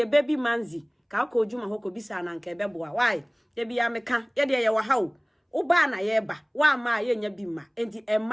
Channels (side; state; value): both; identical; correlation 1.00